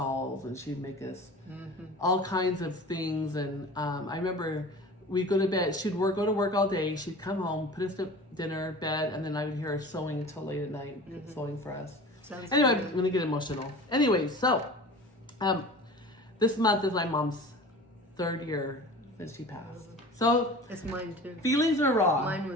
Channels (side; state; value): both; normal; correlation 0.38